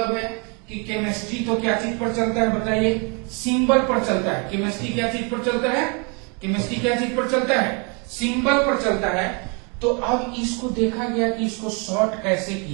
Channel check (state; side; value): quieter; left; 34.2 dB